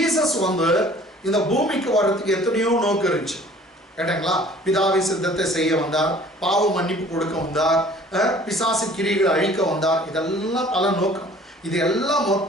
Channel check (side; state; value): both; normal; correlation 0.51